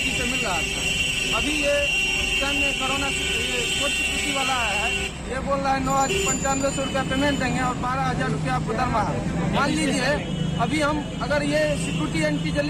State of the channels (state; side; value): identical; both; correlation 1.00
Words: से मिल रहा था। अभी ये टाइम में कोरोना कोर्ट सिक्योरिटी वाला है, ये बोल रहा है 9,9500 रुपया पेमेंट देंगे और 12,000 रुपया आपको दरमाहा। मान लीजिए अभी हम अगर ये सिक्योरिटी